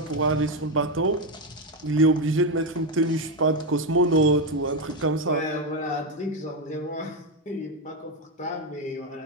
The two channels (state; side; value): normal; both; correlation 0.08